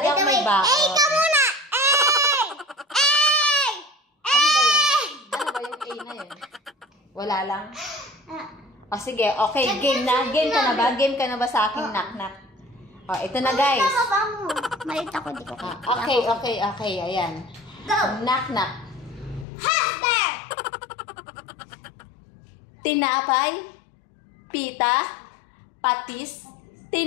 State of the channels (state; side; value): drops out; right; at 19.5 s